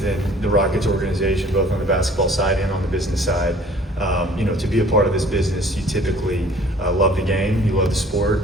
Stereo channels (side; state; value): both; normal; correlation 0.52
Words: the Rockets organization, both on the basketball side and on the business side. You know, to be a part of this business, you typically love the game, you love the sport,